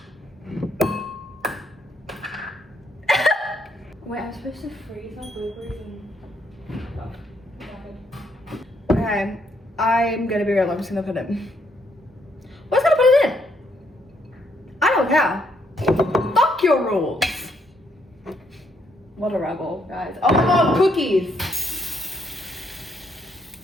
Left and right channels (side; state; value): both; normal; correlation 0.72